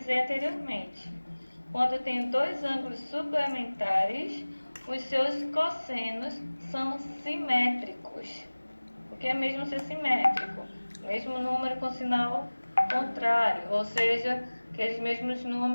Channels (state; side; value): inverted; both; correlation -1.00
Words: anteriormente. Quando eu tenho dois ângulos suplementares, os seus cossenos são simétricos. O que é mesmo ser simétrico? Mesmo número com sinal contrário, ou seja, aqueles mesmos